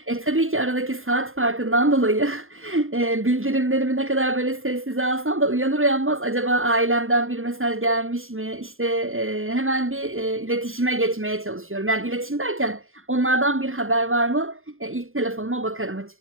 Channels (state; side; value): late; left; 0.60 ms